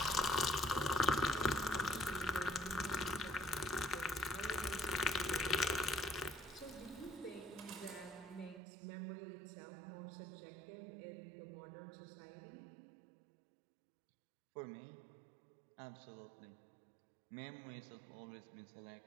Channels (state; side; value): drops out; left; at 8.6 s